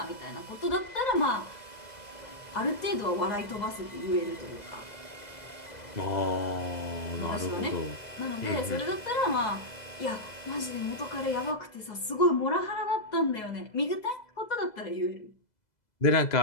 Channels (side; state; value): right; late; 2.0 ms